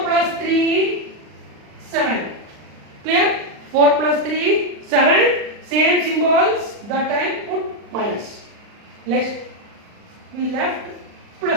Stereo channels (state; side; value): late; left; 39 ms